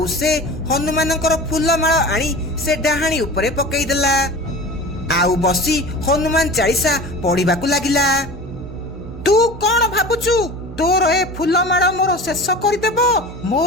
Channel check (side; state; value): both; normal; correlation 0.35